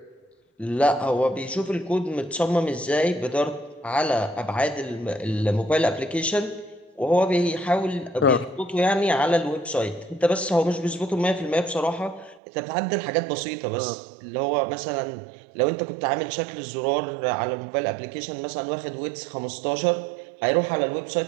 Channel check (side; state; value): left; drops out; at 12.4 s